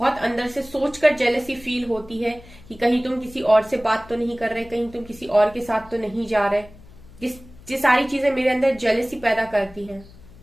अंदर से सोचकर जेलसी फील होती है कि कहीं तुम किसी और से बात तो नहीं कर रहे, कहीं तुम किसी और के साथ तो नहीं जा रहे। ये सारी चीजें मेरे अंदर जेलसी पैदा करती हैं।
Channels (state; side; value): noise; left; hum, 21 dB below the sound